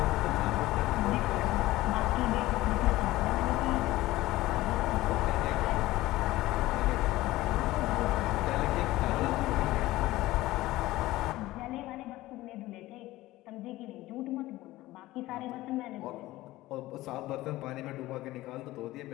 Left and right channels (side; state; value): right; quieter; 17.3 dB